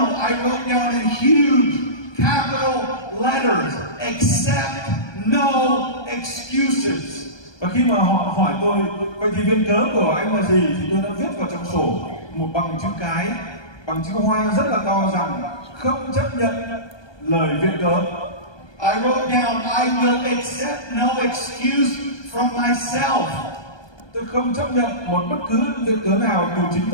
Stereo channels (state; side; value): late; right; 1.2 ms